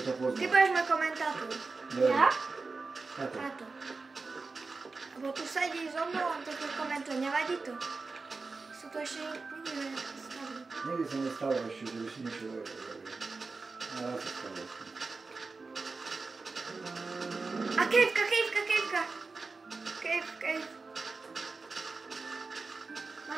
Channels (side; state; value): left; quieter; 4.0 dB